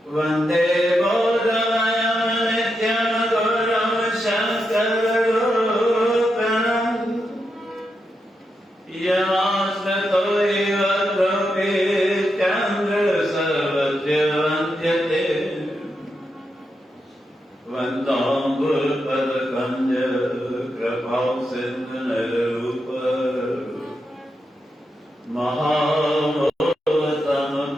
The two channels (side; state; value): both; normal; correlation 0.85